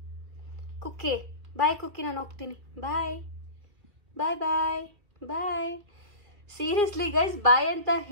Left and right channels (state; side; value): late; left; 2.1 ms